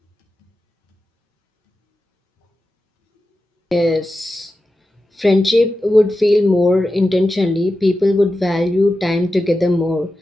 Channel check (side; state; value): both; normal; correlation 0.92